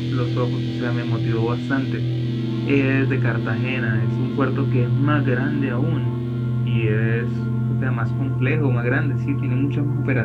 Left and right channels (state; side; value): identical; both; correlation 1.00